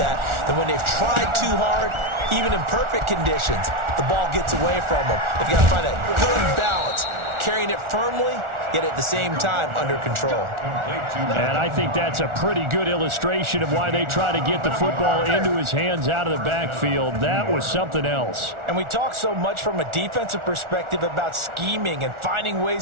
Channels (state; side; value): late; left; 1.4 ms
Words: when they've tried too hard, even in perfect conditions, the ball gets away from them. If you got to find a good balance, carrying it firmly, yet at the same time under control. And I think that's a pretty good illustration of why they try to get the football into his hands out of the backfield. That was something else. And we talk so much from a defensive perspective about scheming and finding